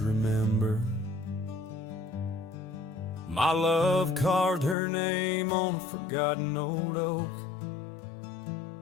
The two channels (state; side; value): drops out; right; at 4.8 s